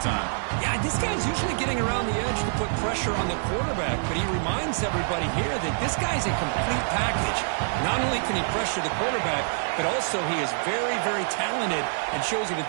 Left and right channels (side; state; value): left; silent; digital silence